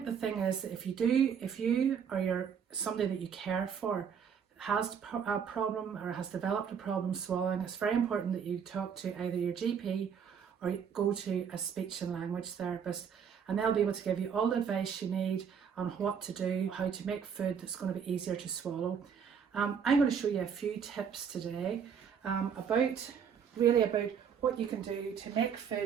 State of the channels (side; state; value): left; quieter; 7.2 dB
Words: the thing is that if you or you're somebody that you care for has a problem or has developed a problem swallowing, it's very important that you talk to either your GP or go to a speech and language therapist, and they'll be able to give you all the advice you need on what to do, how to make food that's going to be easier to swallow. I'm going to show you a few tips today about what you can do to make